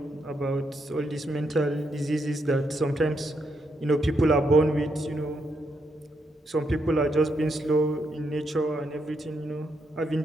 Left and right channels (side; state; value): both; normal; correlation 0.79